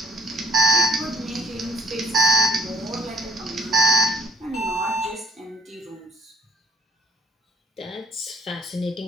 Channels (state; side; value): normal; both; correlation 0.59